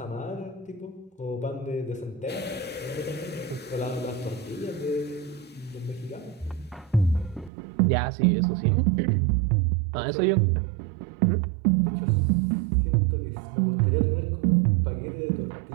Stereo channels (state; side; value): drops out; left; at 7.5 s